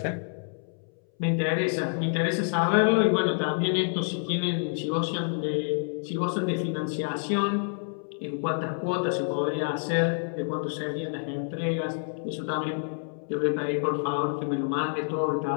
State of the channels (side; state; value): right; silent; 59 dB below the other